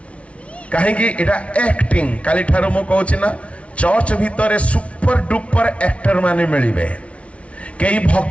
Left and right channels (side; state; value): right; late; 0.063 ms